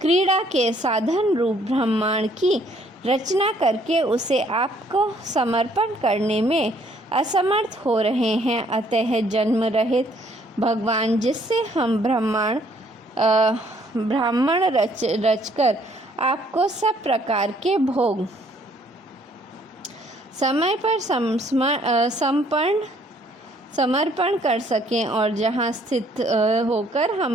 के साधन रूप ब्रह्मांड की रचना करके उसे आपको समर्पण करने में असमर्थ हो रहे हैं। अतः जन्म रहित भगवान, जिससे हम ब्राह्मण रचकर आपको सब प्रकार के भोग समय पर समर्पण कर सकें और जहाँ स्थित होकर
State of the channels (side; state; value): both; normal; correlation 0.63